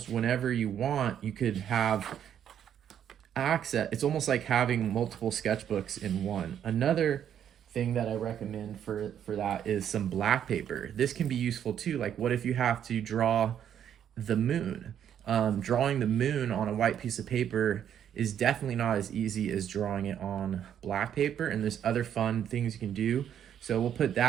whenever you want, you could have access. It's almost like having multiple sketchbooks in one. Another thing that I recommend for that is some black paper. This can be useful too. Like, what if you have to draw the moon? Drawing the moon on a white piece of paper is definitely not as easy as drawing it on black paper, and there's other fun things you can do. So we'll put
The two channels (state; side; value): quieter; left; 9.5 dB